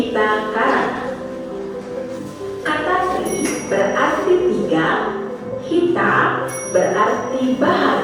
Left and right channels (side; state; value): both; identical; correlation 1.00